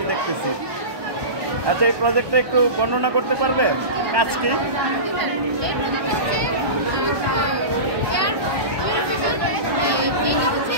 দেখতেছি। আচ্ছা, এই প্রজেক্টটা একটু বর্ণনা করতে পারবে? কাজ কি?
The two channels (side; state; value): left; late; 1.2 ms